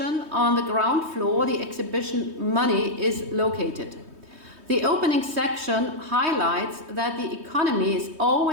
on the ground floor, the exhibition Money, is located. The opening section highlights that the economy is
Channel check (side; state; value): left; late; 3.2 ms